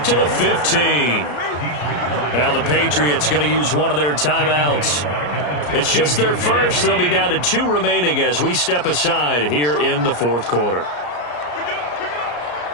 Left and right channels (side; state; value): right; late; 34 ms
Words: to the 15. Now the Patriots going to use one of their timeouts. It's just their first. They'll be down to 2 remaining as we step aside here in the 4th quarter.